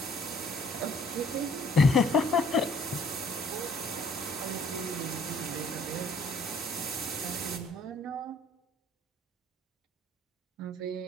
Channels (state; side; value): normal; both; correlation 0.60